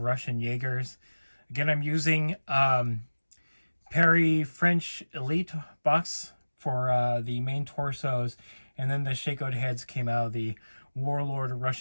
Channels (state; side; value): inverted; both; correlation -1.00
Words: Russian Jaegers. Again, I'm using Perry French Elite box for the main torsos. And then the shakeout heads came out of the Warlord